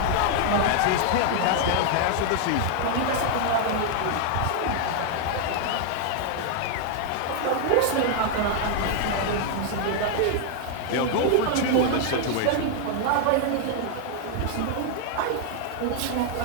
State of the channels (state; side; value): different; both; correlation 0.00